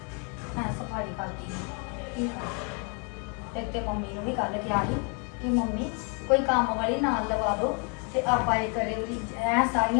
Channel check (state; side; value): quieter; right; 37.2 dB